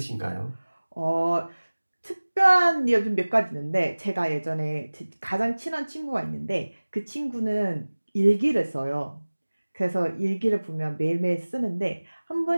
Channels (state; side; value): inverted; both; correlation -1.00